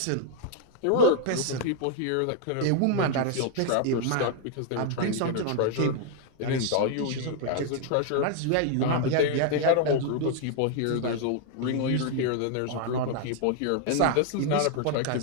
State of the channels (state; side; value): different; both; correlation 0.00